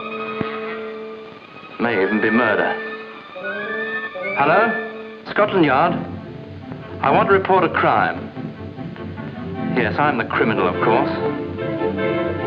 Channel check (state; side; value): identical; both; correlation 1.00